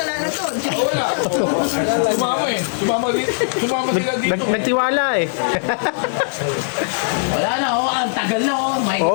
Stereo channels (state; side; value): silent; right; 66 dB below the other